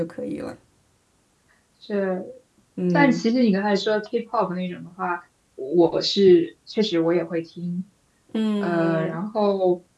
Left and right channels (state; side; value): identical; both; correlation 1.00